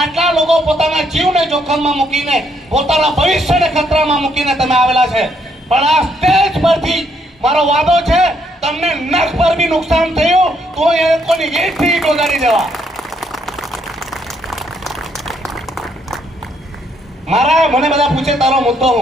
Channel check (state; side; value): normal; both; correlation 0.72